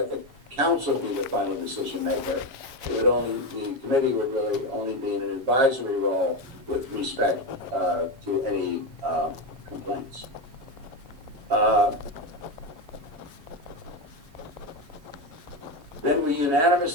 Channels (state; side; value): late; left; 7.3 ms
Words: the council be the final decision maker, the committee would really only be in an advisory role with respect to any complaints. Then we